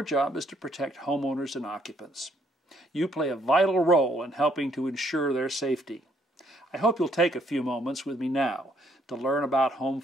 job is to protect homeowners and occupants. You play a vital role in helping to ensure their safety. I hope you'll take a few moments with me now to learn about home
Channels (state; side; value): normal; both; correlation 0.68